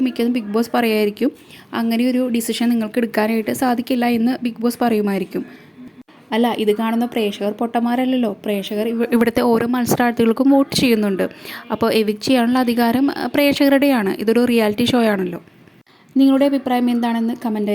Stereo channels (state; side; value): identical; both; correlation 1.00